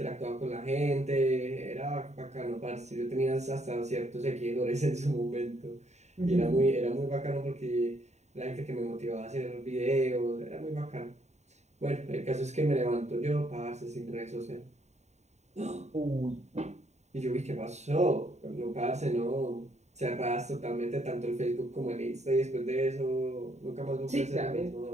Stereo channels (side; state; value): left; late; 0.33 ms